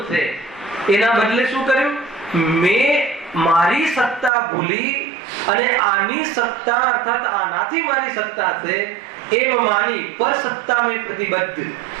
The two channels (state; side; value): drops out; left; at 4.3 s